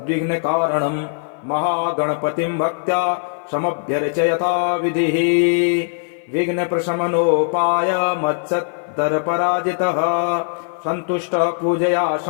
महागणपतिं भक्त्या समभ्यर्चयता विधिः। विघ्नप्रशमनोपाय मत्सत्तरपराजितः सन्तुष्टः पूजया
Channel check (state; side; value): silent; right; 57 dB below the other